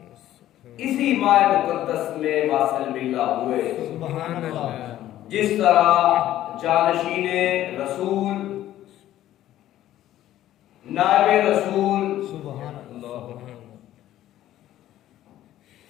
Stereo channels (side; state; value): right; quieter; 13.2 dB